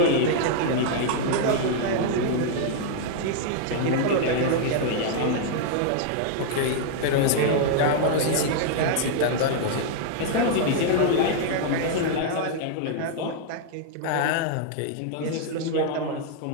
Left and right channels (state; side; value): different; both; correlation -0.01